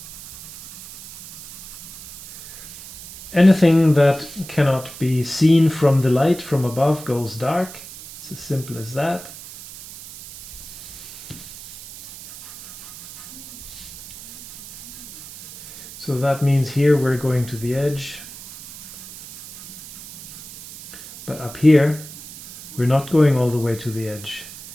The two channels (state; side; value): noise; right; hiss, 15 dB below the sound